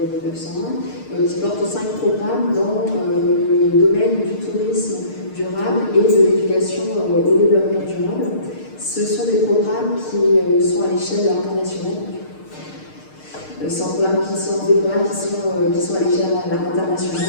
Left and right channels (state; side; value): late; right; 6.6 ms